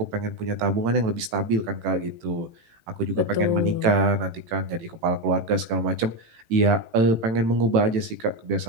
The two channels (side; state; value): left; late; 18 ms